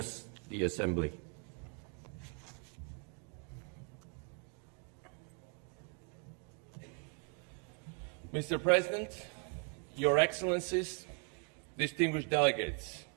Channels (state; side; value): quieter; left; 39.7 dB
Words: the Assembly. Mr. President, Your Excellencies, distinguished delegates,